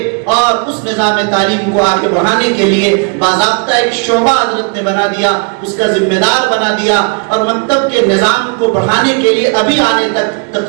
اور اس نظام تعلیم کو آگے بڑھانے کے لیے باضابطہ ایک شعبہ حضرت نے بنا دیا, اس کا ذمہ دار بنا دیا. اور مکتب کے نظام کو بڑھانے کے لیے ابھی آنے تک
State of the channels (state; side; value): quieter; left; 35.9 dB